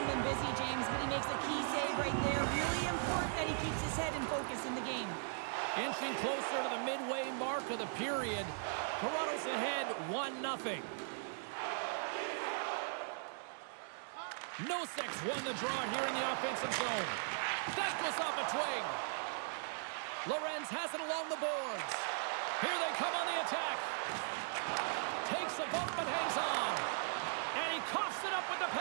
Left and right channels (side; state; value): left; silent; digital silence